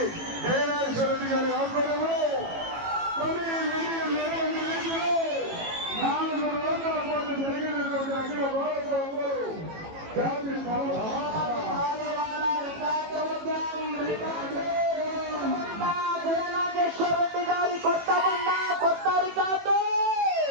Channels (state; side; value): late; left; 18 ms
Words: జయనాగేశ్వర రెడ్డి గారి ఆధ్వర్యంలో 4 రోజుల పాటు జరిగినటువంటి అఖిల భారత జాతి జయనాగేశ్వర రెడ్డి గారి కొత్త బండ కొత్త రికార్డు.